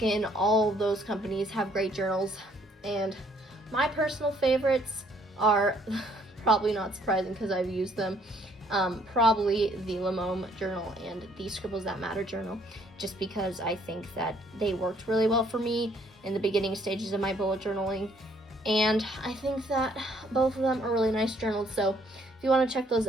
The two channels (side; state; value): both; normal; correlation 0.65